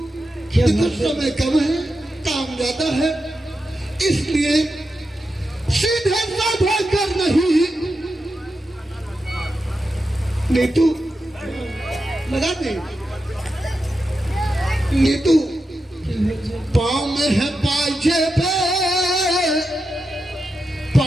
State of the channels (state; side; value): normal; both; correlation 0.88